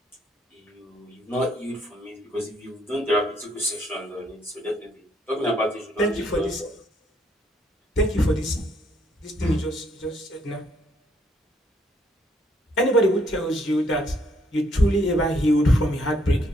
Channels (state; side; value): normal; both; correlation 0.70